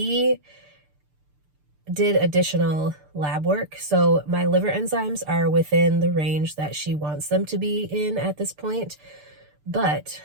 did additional lab work. So my liver enzymes are within the range that she wants them to be in at this point. But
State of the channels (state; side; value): late; left; 6.8 ms